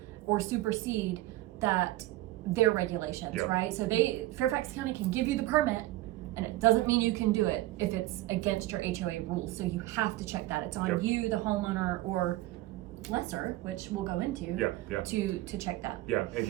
or supersede that their regulations, right? So Fairfax County can give you the permit, and it doesn't mean you can do it if it's against your HOA rules. So you have to check that. It's on you, the homeowner, or lesser, which we'll go into, to check that. Yeah, and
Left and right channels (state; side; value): quieter; left; 17.0 dB